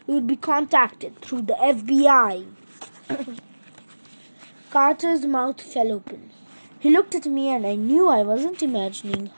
you will be contacted through the FBI." Carter's mouth fell open. He looked at me and I knew I wasn't imagining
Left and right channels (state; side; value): inverted; both; correlation -1.00